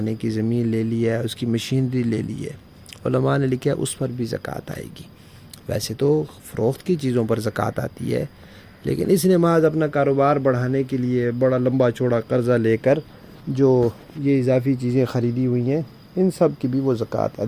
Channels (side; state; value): both; identical; correlation 1.00